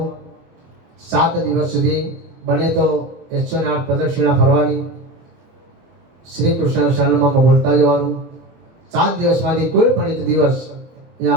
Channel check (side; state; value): left; late; 24 ms